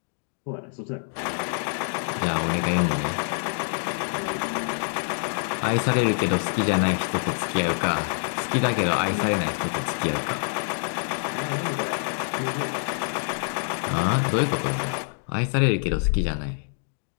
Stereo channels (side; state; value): right; silent; digital silence